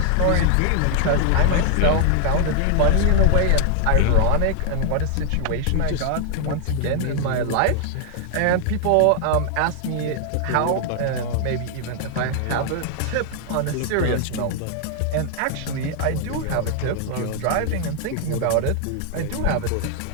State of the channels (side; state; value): both; different; correlation 0.00